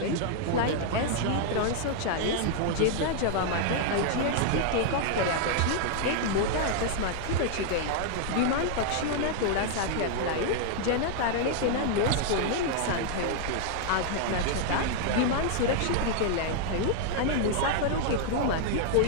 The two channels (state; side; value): different; both; correlation 0.00